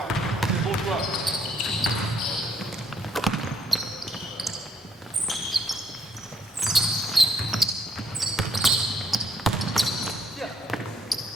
C'est bon choix. Tiens.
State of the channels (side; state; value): both; normal; correlation 0.69